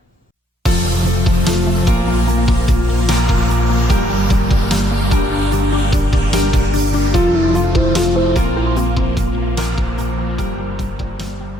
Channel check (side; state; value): both; normal; correlation 0.71